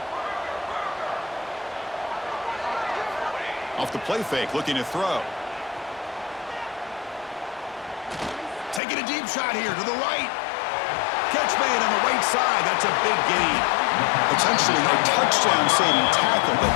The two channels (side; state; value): right; drops out; at 8.8 s